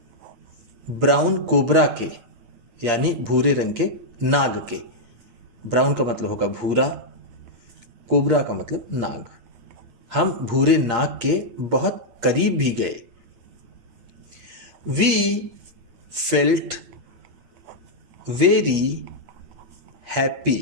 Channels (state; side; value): late; left; 8.6 ms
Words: brown cobra के यानी भूरे रंग के नाग के। ब्राउन का मतलब होगा भूरा, कोबरा का मतलब नाग। हम भूरे नाग के बहुत करीब भी गए। वी फेल्ट वेरी हैप्पी,